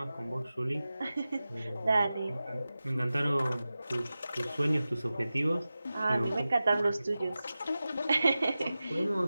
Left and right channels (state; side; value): inverted; both; correlation -0.95